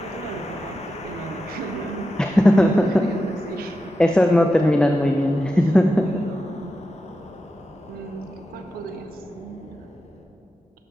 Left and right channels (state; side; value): normal; both; correlation 0.90